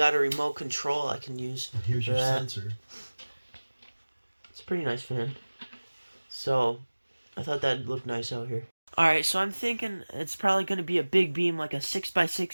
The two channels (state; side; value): inverted; both; correlation -1.00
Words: a remote control I can use. And here's your sensor. It's a pretty nice fan. So I thought that'd look nice out here. Alright, so I'm thinking it's probably going to be a big beam, like a